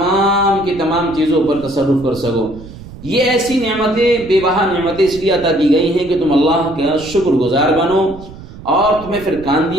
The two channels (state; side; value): noise; right; rumble, 16 dB below the sound